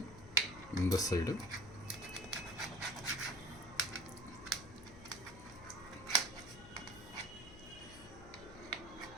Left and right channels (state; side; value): noise; left; hum, 15 dB below the sound